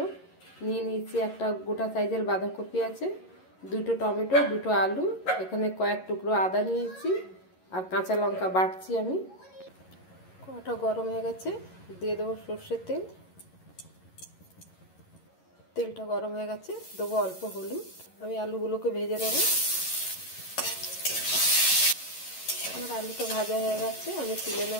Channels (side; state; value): right; late; 11 ms